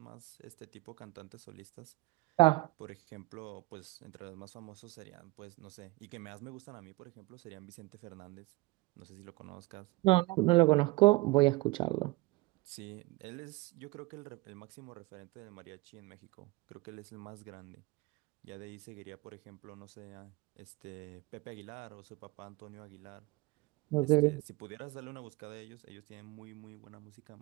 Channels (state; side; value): quieter; left; 22.3 dB